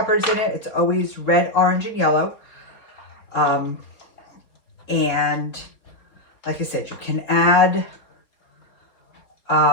in it. It's always red, orange, and yellow. And like I said, you can add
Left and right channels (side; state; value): right; late; 4.2 ms